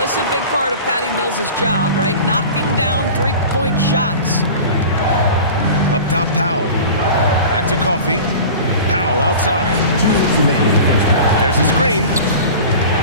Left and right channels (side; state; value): both; inverted; correlation -0.37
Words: this is a big part of Patty Mills' job, right? Knocking down three-point shots. Up top, Powell. Back to Coffey. Powell outside. There's a screen.